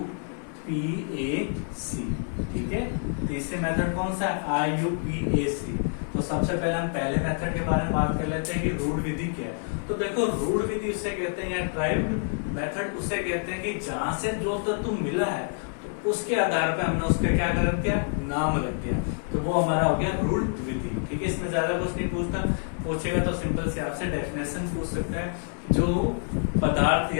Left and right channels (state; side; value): silent; right; 56 dB below the other